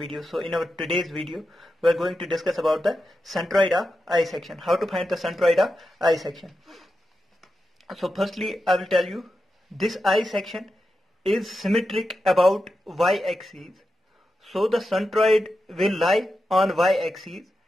So in our today's video, we are going to discuss about the centroid of I section. How to find the centroid of I section. So firstly, I will tell you, this I section is symmetric about y-axis. So the centroid will lie on y-axis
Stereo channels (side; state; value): both; normal; correlation 0.89